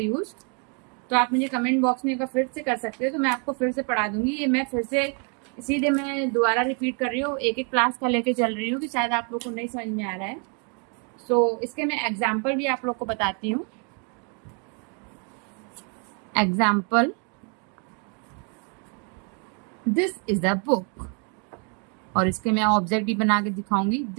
तो आप मुझे कमेंट बॉक्स में एक बार फिर से कर सकते हो, तो मैं आपको फिर से पढ़ा दूंगी। ये मैं फिर से इसीलिए मैं दोबारा रिपीट कर रही हूँ, एक एक क्लास का लेके चल रही हूँ कि शायद आप लोग को नहीं समझ में आ रहा है। इसके मैं एग्जाम्पल भी आप लोग को बताती हूँ। Example, this is a book, और इसके मैं ऑब्जेक्ट भी बना के दिखाऊंगी।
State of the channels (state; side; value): quieter; left; 38.1 dB